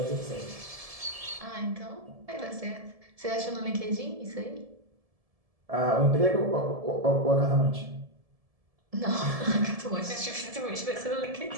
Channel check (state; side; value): late; left; 1.7 ms